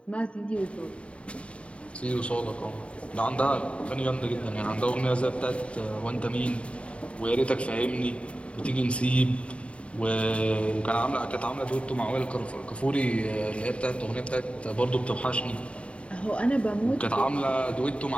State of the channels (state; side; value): late; right; 0.061 ms